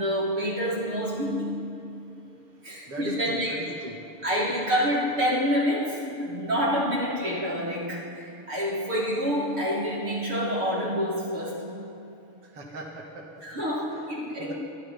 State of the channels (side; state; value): left; late; 6.7 ms